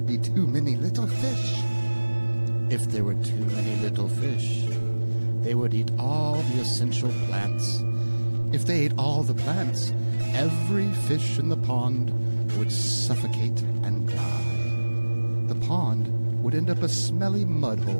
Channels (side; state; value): both; inverted; correlation -1.00